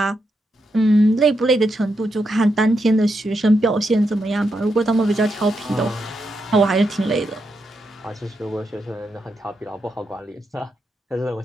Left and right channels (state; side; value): normal; both; correlation 0.83